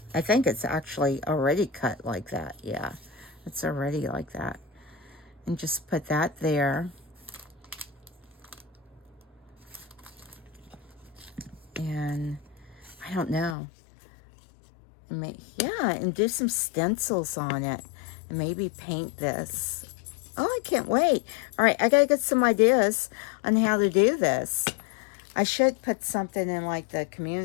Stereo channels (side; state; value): right; drops out; at 13.6 s